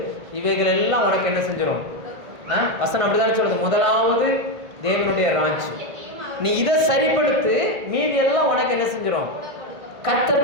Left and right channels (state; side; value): late; left; 1.5 ms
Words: இவைகள் எல்லாம் உனக்கு என்ன செஞ்சிடும். வசனம் அப்படிதான் சொல்லுது, முதலாவது தேவனுடைய ராஜ்யம். நீ இதை சரிப்படுத்து, மீதி எல்லாம் உனக்கு என்ன செஞ்சிடும்.